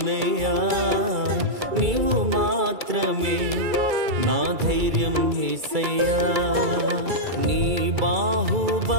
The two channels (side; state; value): left; late; 2.3 ms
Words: నీవు మాత్రమే నా ధైర్యం యేసయ్యా. నీ